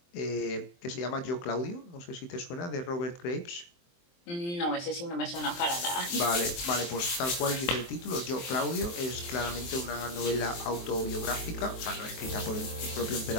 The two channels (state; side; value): late; right; 23 ms